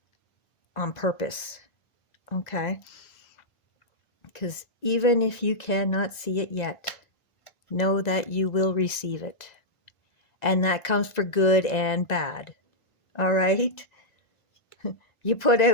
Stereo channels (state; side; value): late; right; 1.9 ms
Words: on purpose, okay? Because even if you cannot see it yet, know that you will receive it. And that comes for good and bad, all right? You put